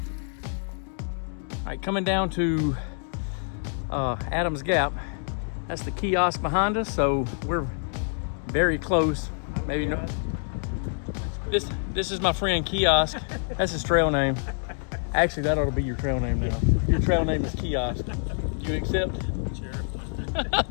All right, coming down to Adams Gap. That's the kiosk behind us, so we're very close. Maybe no. This is my friend Kiosk. That's his trail name. Actually, that ought to be your trail name now. Your trail name is Kiosk. Do you accept? Sure.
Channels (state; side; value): silent; right; 60 dB below the other